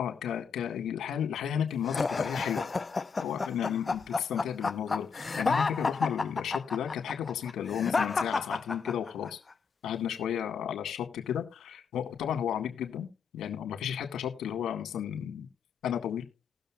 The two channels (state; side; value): quieter; right; 6.3 dB